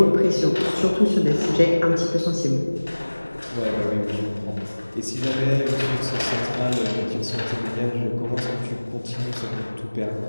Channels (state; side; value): inverted; both; correlation -1.00